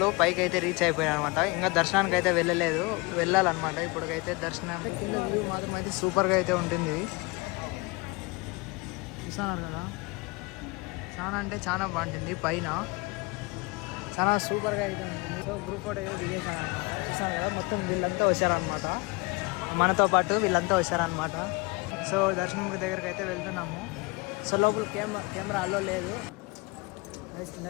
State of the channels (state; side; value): quieter; right; 26.8 dB